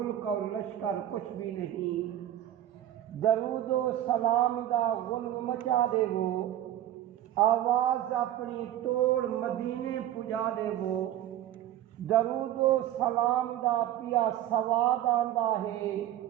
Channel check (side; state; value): left; quieter; 12.3 dB